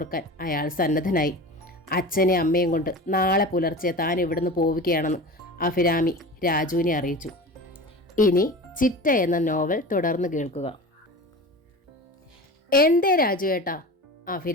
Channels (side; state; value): both; normal; correlation 0.33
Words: അയാൾ സന്നദ്ധനായി. അച്ഛനെ അമ്മയും കൊണ്ട് നാളെ പുലർച്ചെ താൻ ഇവിടുന്ന് പോവുകയാണെന്ന് അഭിരാമി രാജുവിനെ അറിയിച്ചു. ഇനി ചിറ്റ എന്ന നോവൽ തുടർന്ന് കേൾക്കുക. എന്തേ രാജു ഏട്ടാ?